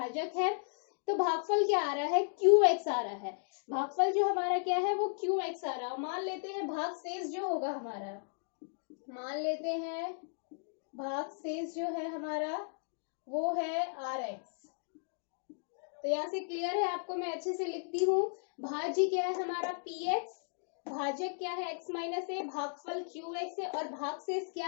है। तो भागफल क्या आ रहा है, qx आ रहा है। भागफल जो हमारा क्या है वो qx आ रहा है। मान लेते हैं भागशेष जो होगा हमारा, मान लेते हैं भागशेष जो है हमारा वो है rx। तो यहाँ से क्लियर है आपको, मैं अच्छे से लिखती हूँ। भाज्य क्या है हमारा px, भाजक क्या है x माइनस ए, भागफल qx है, और भागशेष क्या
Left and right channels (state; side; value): silent; right; digital silence